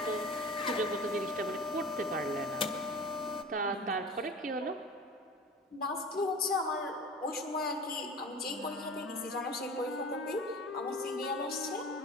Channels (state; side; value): normal; both; correlation 0.37